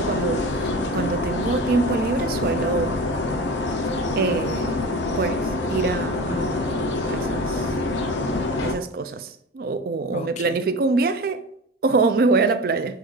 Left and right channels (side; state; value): both; normal; correlation 0.32